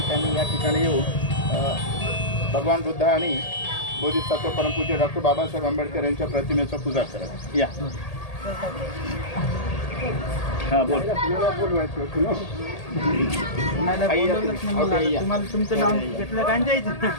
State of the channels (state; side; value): late; right; 1.8 ms